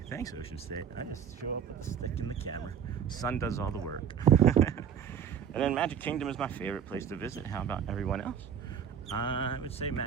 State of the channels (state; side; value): quieter; left; 8.0 dB